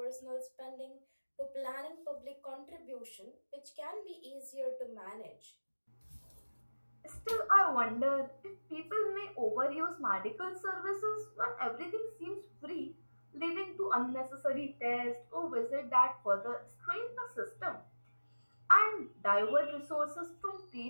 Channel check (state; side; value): inverted; both; correlation -1.00